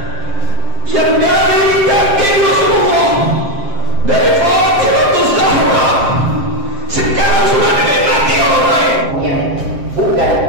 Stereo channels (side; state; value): left; late; 7.6 ms